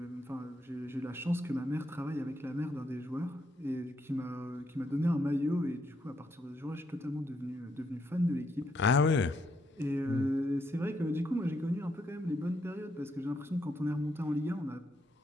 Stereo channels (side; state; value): both; normal; correlation 0.76